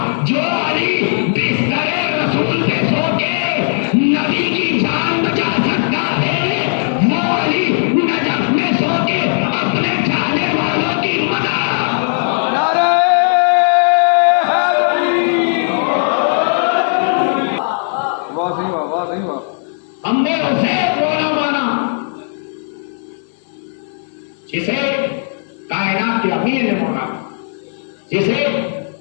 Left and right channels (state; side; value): silent; right; digital silence